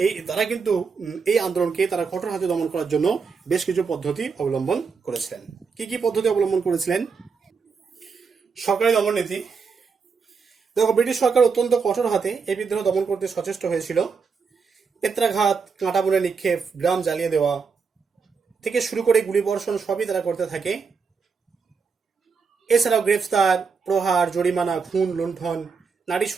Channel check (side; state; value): left; quieter; 5.3 dB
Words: এই আন্দোলনকে তারা কঠোর হাতে দমন করার জন্য বেশ কিছু পদ্ধতি অবলম্বন করেছিলেন। কি পদ্ধতি অবলম্বন করেছিলেন? সরকারি দমন নীতি। দেখো, ব্রিটিশ সরকার অত্যন্ত কঠোর হাতে এই বিদ্রোহ দমন করতে সচেষ্ট হয়েছিল। পেত্রাঘাত, কাঁটা বনে নিক্ষেপ, গ্রাম জ্বালিয়ে দেওয়া থেকে শুরু করে গুলিবর্ষণ সবই তারা করতে থাকে। এছাড়াও গ্রেফতার, প্রহার, জরিমানা, খুন, লুণ্ঠন, নারী